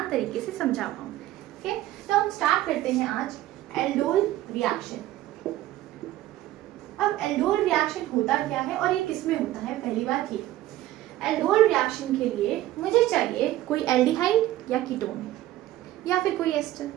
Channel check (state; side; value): quieter; left; 15.0 dB